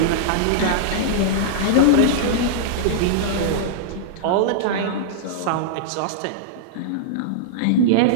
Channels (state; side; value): different; both; correlation -0.02